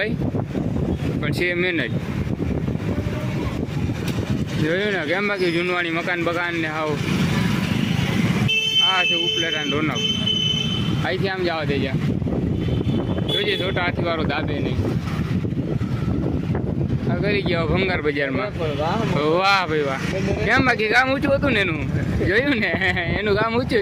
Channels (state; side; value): identical; both; correlation 1.00